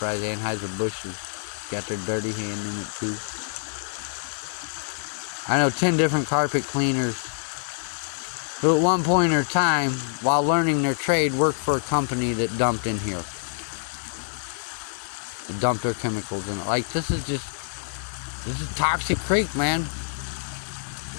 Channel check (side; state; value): right; silent; digital silence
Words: Anheuser-Busch has got their dirty hand in it too. I know 10 different carpet cleaners who at one point in time, while learning their trade, worked for a company that dumped in here. They dumped their chemicals in it. Like, this is toxic creek, man.